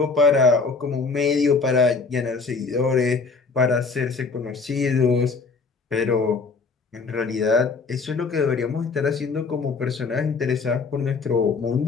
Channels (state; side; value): quieter; right; 4.4 dB